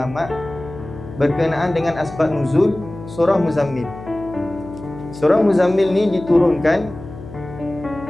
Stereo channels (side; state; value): left; noise; hum, 14 dB below the sound